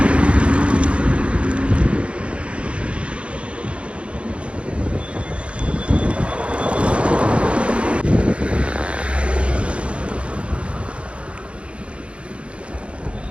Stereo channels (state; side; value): late; left; 0.060 ms